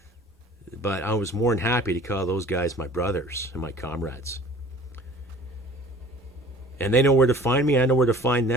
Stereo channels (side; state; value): both; normal; correlation 0.47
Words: But I was more than happy to call those guys my brothers and my comrades. And they know where to find me. I know where to find